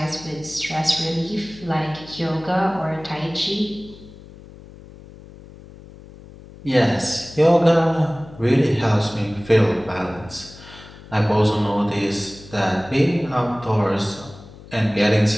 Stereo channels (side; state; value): left; noise; hum, 19 dB below the sound